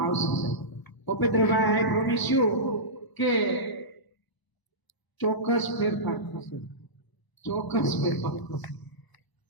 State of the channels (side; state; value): right; late; 1.0 ms